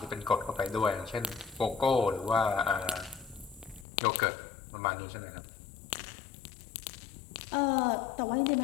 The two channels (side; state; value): right; drops out; at 3.9 s